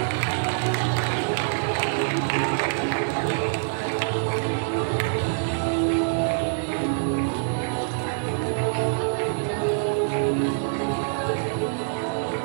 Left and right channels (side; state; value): left; silent; digital silence